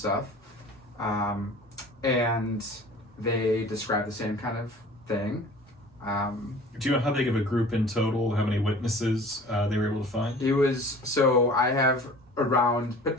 And they described the same kind of thing. Do you know how big of a group in total, how many witnesses they were able to find? It was, so I have around,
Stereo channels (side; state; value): both; normal; correlation 0.44